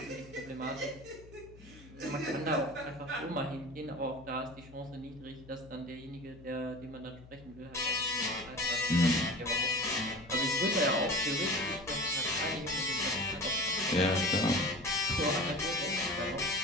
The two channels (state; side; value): noise; left; hum, 20 dB below the sound